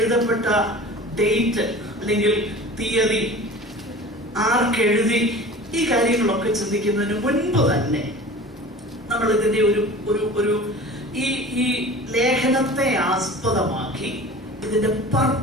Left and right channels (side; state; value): both; normal; correlation 0.39